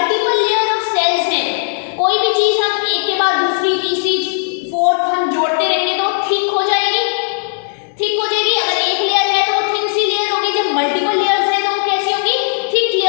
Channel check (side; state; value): right; silent; 67 dB below the other